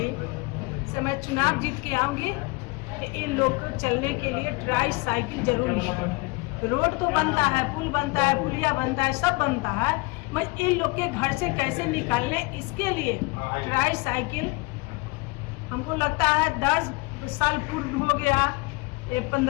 से मैं चुनाव जीत के आऊँगी कि इन लोग को चलने के लिए ट्राई साइकिल जरूरी है। रोड तो बनता है, पुल बनता है, पुलिया बनता है, सब बनता है, मैं इन लोग के घर से कैसे निकालने, इसके लिए ट्राई साइकिल हमको लगता है 10 साल पूर्ण हो गया,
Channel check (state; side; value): quieter; right; 25.8 dB